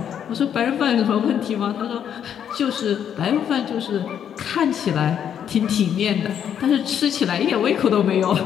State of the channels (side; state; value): right; quieter; 8.9 dB